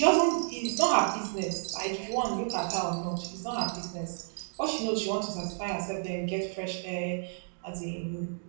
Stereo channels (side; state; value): left; silent; 57 dB below the other